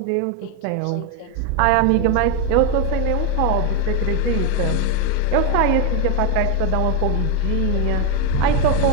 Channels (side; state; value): both; different; correlation 0.01